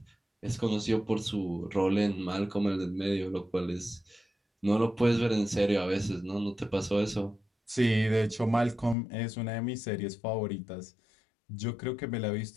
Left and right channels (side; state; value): right; drops out; at 9.0 s